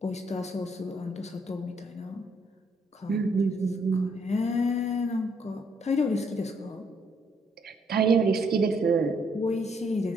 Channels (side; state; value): both; normal; correlation 0.70